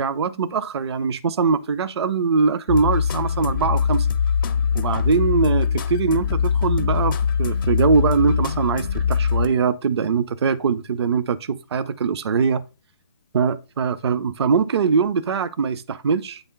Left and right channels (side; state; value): both; inverted; correlation -0.58